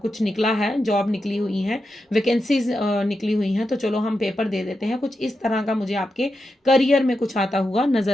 कुछ निकला है, जॉब निकली हुई है, वैकेंसीज निकली हुई हैं, तो चलो हम पेपर दे देते हैं। कुछ इस तरह का मुझे आपके करियर में कुछ आता हुआ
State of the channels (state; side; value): normal; both; correlation 0.88